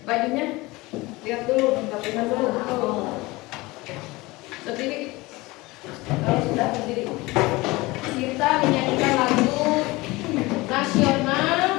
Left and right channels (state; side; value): quieter; right; 21.7 dB